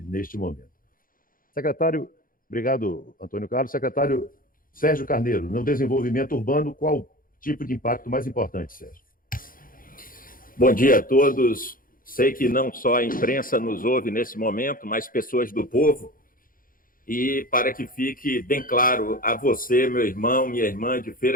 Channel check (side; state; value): right; late; 0.41 ms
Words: momento. Secretário, obrigado, Antônio Carlos. Secretário Sérgio Carneiro, no desenvolvimento urbano, qual o tipo de impacto mais importante, Sérgio? Bom dia a todos. Sei que não só a imprensa nos ouve nesse momento, mas pessoas do povo. E para que fique bem claro a você, meu irmão, minha irmã de